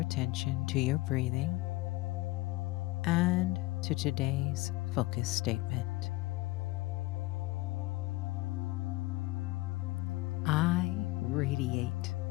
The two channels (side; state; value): right; quieter; 20.5 dB